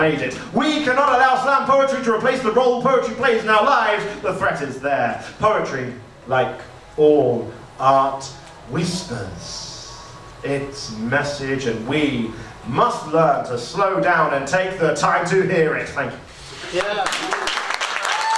it. We cannot allow slam poetry to replace the role poetry plays in our lives. The threat is there. Poetry, like all art, whispers its message, and we must learn to slow down and take the time to hear it. Thank you. Yeah.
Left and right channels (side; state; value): both; identical; correlation 1.00